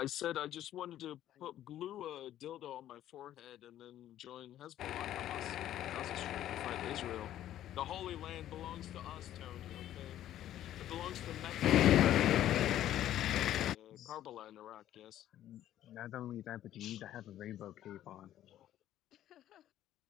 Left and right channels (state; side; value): quieter; right; 12.3 dB